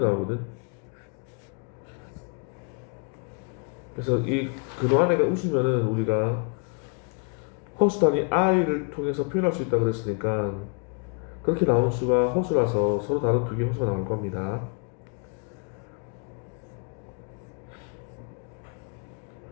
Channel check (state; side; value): quieter; right; 35.8 dB